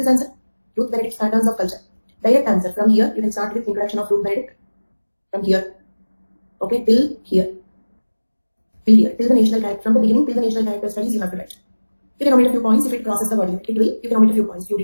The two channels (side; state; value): both; inverted; correlation -1.00